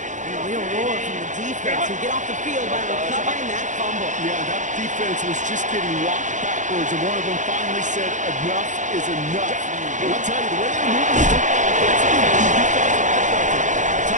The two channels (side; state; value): left; late; 0.36 ms